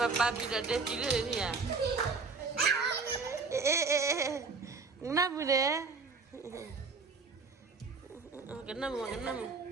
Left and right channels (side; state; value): left; quieter; 4.4 dB